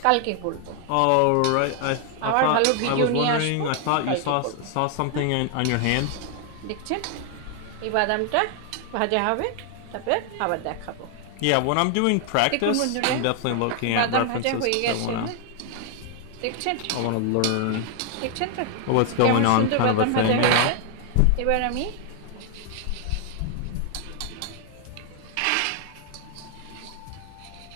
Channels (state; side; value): different; both; correlation 0.00